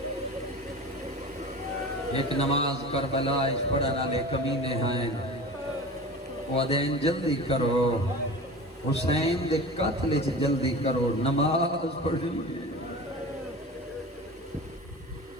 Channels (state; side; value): normal; both; correlation 0.34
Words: ایک نماز کربلا پڑھن والے کمینے ہیں، وہ دین جلدی کرو، حسین دے قتل چ جلدی کرو، نماز پڑھنی ہے.